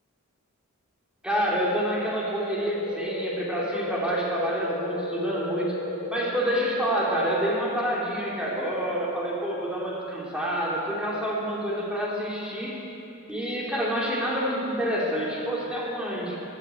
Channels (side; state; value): both; normal; correlation 0.24